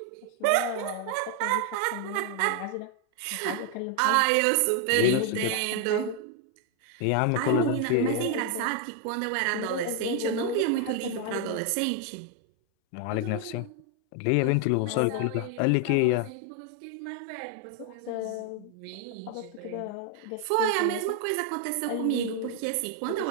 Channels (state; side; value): different; both; correlation 0.01